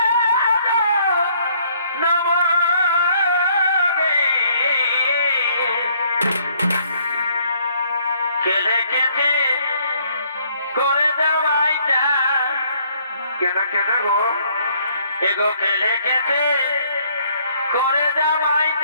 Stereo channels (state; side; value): inverted; both; correlation -0.65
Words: খেলে খেতে করে দেওয়াই যায়। কেন কেন গো? এগো খেলে খেতে করে দেওয়াই